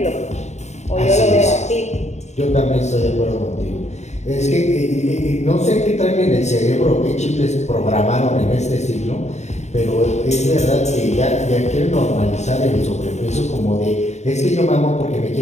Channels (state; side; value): late; right; 0.33 ms